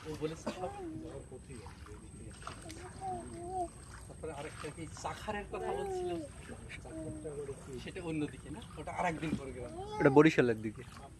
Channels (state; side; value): identical; both; correlation 1.00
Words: ও বলেছে সব। তারপরে আরেকটা কি চাখারের কথা বলছিল, সেটা অন্যদিকে না, ওটা আরেকদিন পরে গেলাম। ওটা বরিশালের দিকে।